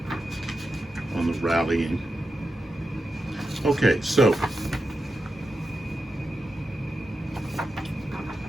on the rallying. Okay, so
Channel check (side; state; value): both; normal; correlation 0.90